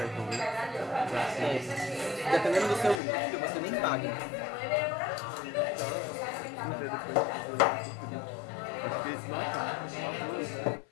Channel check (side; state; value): right; drops out; at 3.0 s